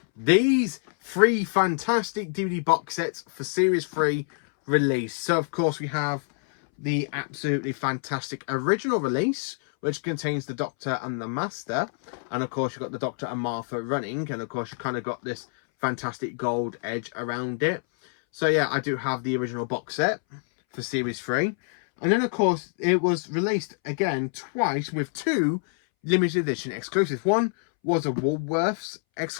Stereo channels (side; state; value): right; silent; 61 dB below the other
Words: these 3 fantastic DVD box sets for Series 3 release. So, of course, we have the absolutely fantastic original release, which contains the Doctor and the Master. And, of course, you've got the Doctor and Martha running. And, of course, you kind of got this fantastic gold edge around it. So, yeah, I do have the original box set. for Series 3. And then, of course, it was released again twice with 2 limited edition exclusives. One was a Woolworths